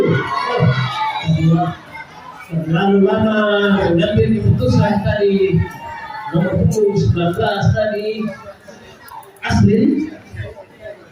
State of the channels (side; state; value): both; identical; correlation 1.00